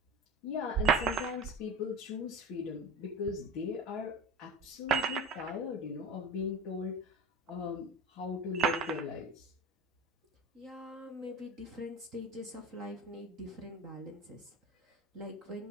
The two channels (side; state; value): both; normal; correlation 0.31